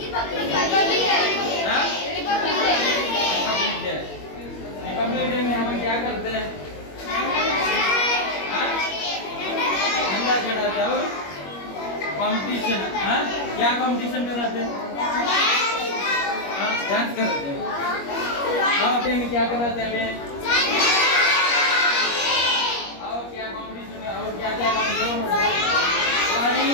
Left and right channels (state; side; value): late; right; 21 ms